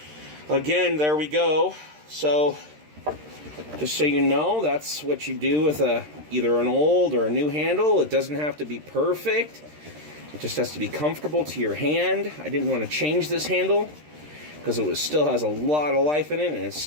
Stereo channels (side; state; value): left; late; 13 ms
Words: again, there we go. So, just so you know, that's what you do with either an old or a new handle. It doesn't have to be perfect. It just has to be comfortable to your hand. I didn't want to change this handle because it still has a lot of life in it, and it's